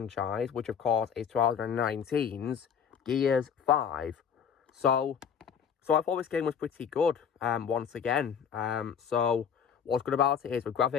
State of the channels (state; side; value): quieter; right; 7.5 dB